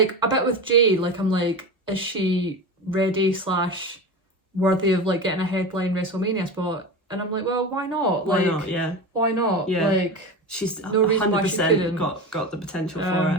a bit with Jade, like, I'm like, is she ready / worthy of like getting a headline WrestleMania spot? And I'm like, well, why not? Why like, not? Why not? Yeah. Like, she's no reason why she couldn't. got the potential for it.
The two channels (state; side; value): normal; both; correlation 0.26